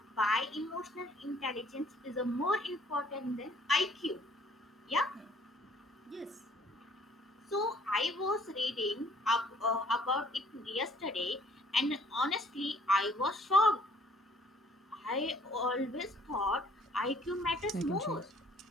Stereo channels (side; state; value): both; normal; correlation 0.59